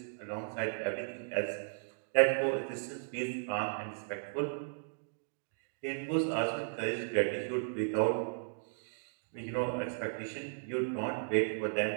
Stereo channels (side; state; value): left; silent; digital silence